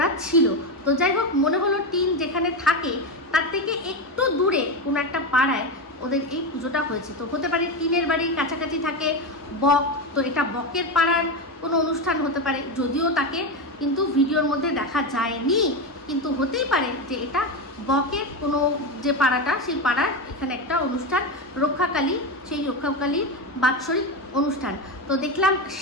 ছিল। তো যাই হোক, মনে হলো টিন যেখানে থাকে তার থেকে একটু দূরে কোনো একটা পাড়ায় ওদের এই পুজোটা হয়েছে। তো হতে পারে টিনের বাড়ির কাছাকাছি থাকে বক, তো এটা বকের পাড়ার কোনো অনুষ্ঠান হতে পারে, যদিও তাকে কিন্তু ভিডিওর মধ্যে দেখা যায়নি, কিন্তু হতেই পারে যে এটা বকের কোনো যে পাড়াটা, সেই পাড়ার এখানে একটা অনুষ্ঠান রক্ষাকালী, সেই রক্ষাকালীর বাৎসরিক অনুষ্ঠান। তো দেখলাম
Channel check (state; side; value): normal; both; correlation 0.15